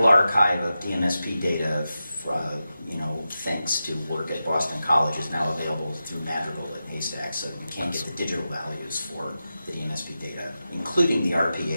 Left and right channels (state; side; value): inverted; both; correlation -0.91